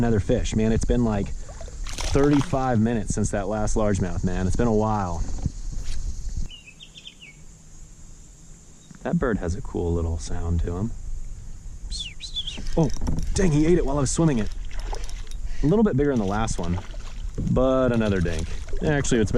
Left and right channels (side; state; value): both; identical; correlation 1.00